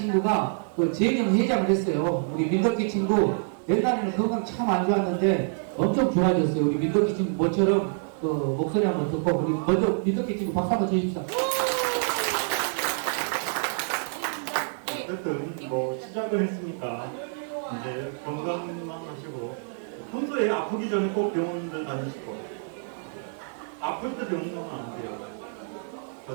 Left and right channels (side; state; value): left; silent; 57 dB below the other